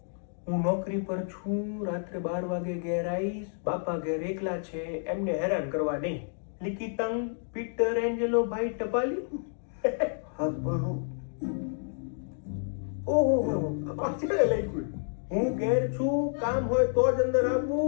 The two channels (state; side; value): silent; right; digital silence